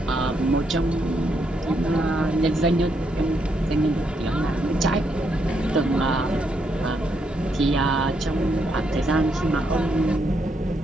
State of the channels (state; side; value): normal; both; correlation 0.77